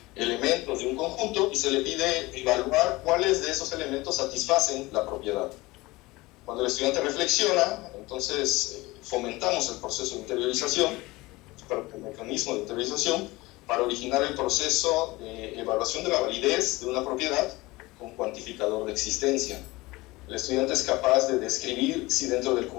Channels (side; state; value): right; quieter; 21.1 dB